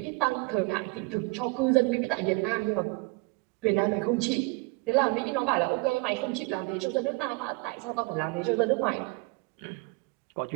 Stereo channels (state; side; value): quieter; left; 27.3 dB